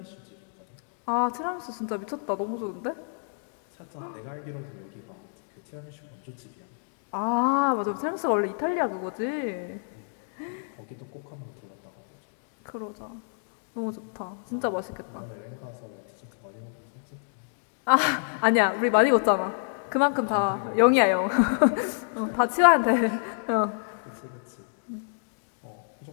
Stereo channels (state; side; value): silent; right; digital silence